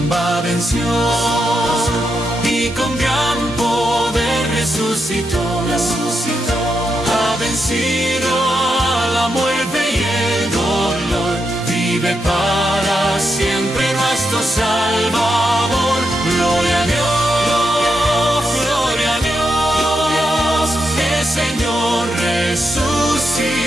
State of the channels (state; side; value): normal; both; correlation 0.84